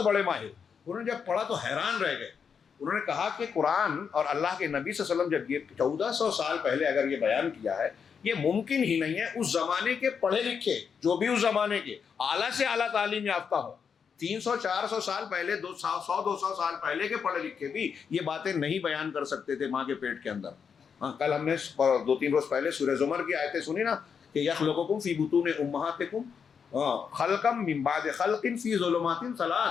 بڑے ماہر، انہوں نے جب پڑھا تو حیران رہ گئے. انہوں نے کہا کہ قرآن اور اللہ کے نبی صلی اللہ علیہ وسلم جب یہ 1400 سال پہلے اگر یہ بیان کیا ہے، یہ ممکن ہی نہیں ہے اس زمانے کے پڑھے لکھے جو بھی اس زمانے کے اعلیٰ سے اعلیٰ تعلیم یافتہ ہو، 300-400 سال پہلے، 100-200 سال پہلے کے پڑھے لکھے بھی یہ باتیں نہیں بیان کر سکتے تھے ماں کے پیٹ کے اندر. ہاں کل ہم نے 2-3 روز پہلے سورہ زمر کی آیتیں سنی نا کہ یخلقکم فی بطون امہاتکم خلقا من بعد خلق فی ظلمات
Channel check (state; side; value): quieter; right; 6.6 dB